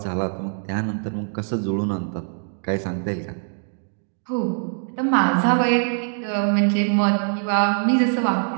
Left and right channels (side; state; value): left; silent; 63 dB below the other